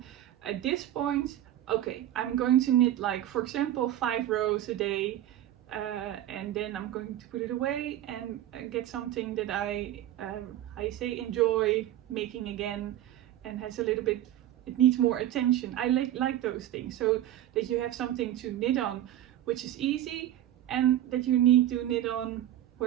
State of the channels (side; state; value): left; quieter; 12.7 dB